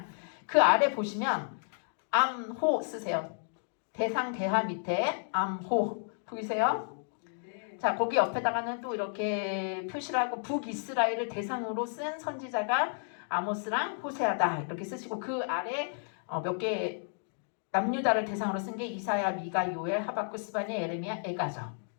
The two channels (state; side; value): silent; right; 56 dB below the other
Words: 그 아래 보시면 암호 쓰세요. 대상 대하 밑에 암호 보이세요? 자, 거기 옆에다가는 또 이렇게 표시를 하고 북이스라엘을 대상으로 쓴 선지자가 아모스랑 호세아다 이렇게 쓰시고 그 아래 몇 개 남유다를 대상으로 쓴 게 이사야, 미가, 요엘, 하박국, 스바냐, 예레미야, 에가죠.